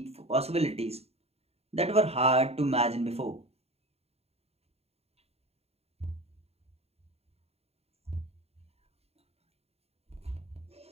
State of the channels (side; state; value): left; late; 0.30 ms